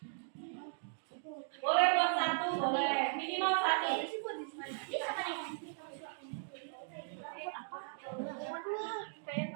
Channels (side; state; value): left; silent; digital silence